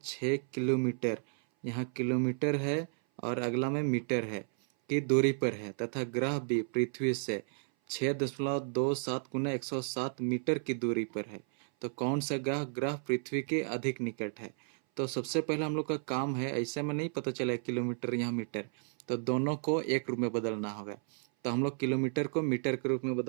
किलोमीटर, यहाँ किलोमीटर है और अगला में मीटर है, की दूरी पर है, तथा ग्रह बी पृथ्वी से 6.27 गुना 107 मीटर की दूरी पर है। तो कौन सा ग्रह ग्रह पृथ्वी के अधिक निकट है। तो सबसे पहले हम लोग का काम है, ऐसे में नहीं पता चला किलोमीटर यहाँ मीटर, तो दोनों को एक रूप में बदलना होगा। तो हम लोग किलोमीटर को मीटर के रूप में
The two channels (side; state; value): left; silent; 56 dB below the other